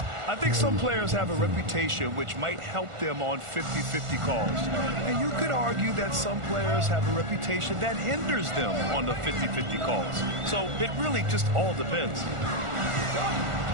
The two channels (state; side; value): late; left; 1.4 ms